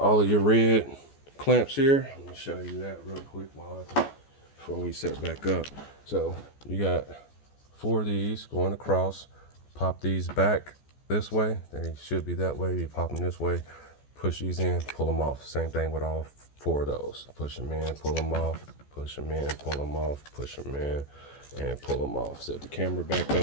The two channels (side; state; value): right; late; 14 ms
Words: of your red clamps here. I'm gonna show you that real quick before we set back up. So you got 4 of these going across. Pop these back this way. They should be that way. You pop them this way, push these in, pull them off. Same thing with all 4 of those. Push them in, pull them off, push them in, pull them off, push them in, and pull them off. Set the camera back